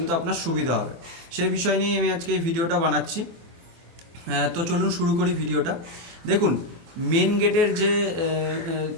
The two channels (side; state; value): left; late; 24 ms